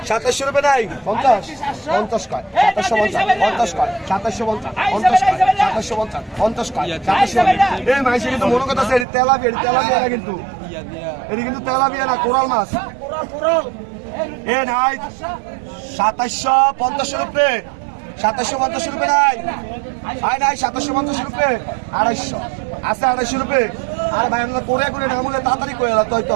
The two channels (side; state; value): left; drops out; at 9.1 s